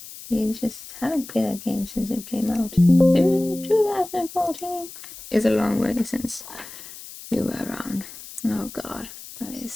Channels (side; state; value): left; noise; hiss, 15 dB below the sound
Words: you just haven't played that game since it came out. 2014. It's a long way since you were around. Oh god, that